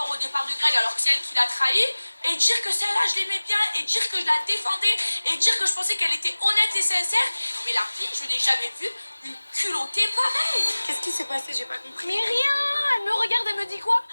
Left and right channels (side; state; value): both; inverted; correlation -1.00